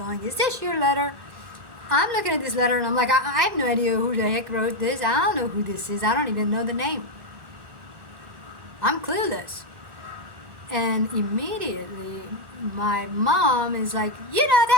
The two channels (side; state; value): left; late; 1.1 ms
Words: is this your letter? I'm looking at this letter and I'm like, I have no idea who the heck wrote this. I don't know who this is. I don't even know the name. I'm clueless. And immediately my mom is like, you know,